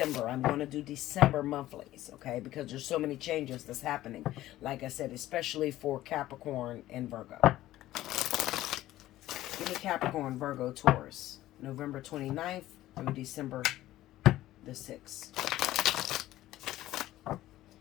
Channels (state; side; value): quieter; right; 15.0 dB